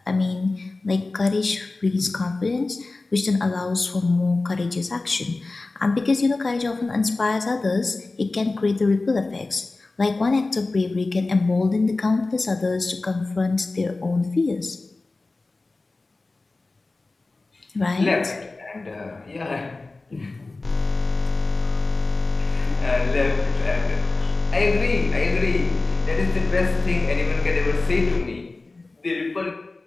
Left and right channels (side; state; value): right; quieter; 3.4 dB